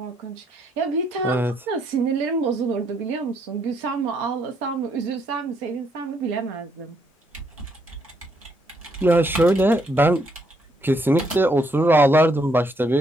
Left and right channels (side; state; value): both; normal; correlation 0.72